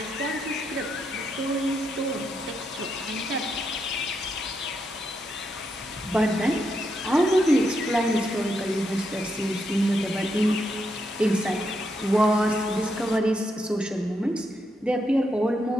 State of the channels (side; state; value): both; normal; correlation 0.81